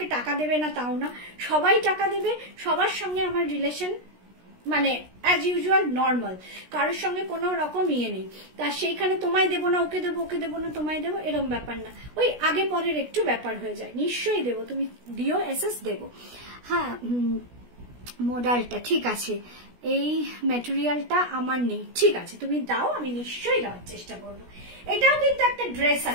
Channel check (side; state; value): left; late; 16 ms